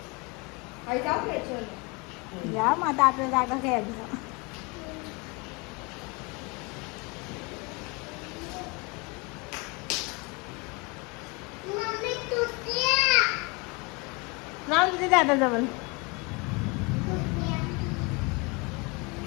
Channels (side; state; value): right; quieter; 28.5 dB